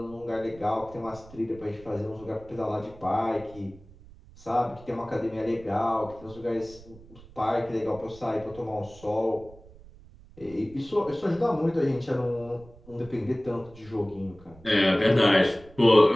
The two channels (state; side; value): noise; right; rumble, 22 dB below the sound